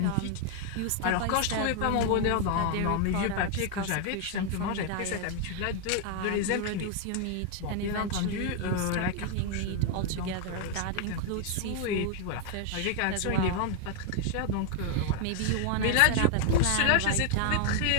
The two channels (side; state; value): both; different; correlation 0.01